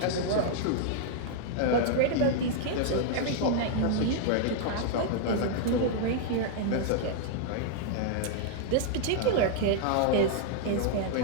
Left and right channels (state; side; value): different; both; correlation -0.01